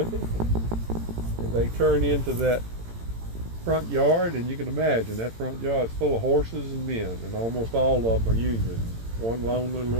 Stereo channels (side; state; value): left; late; 18 ms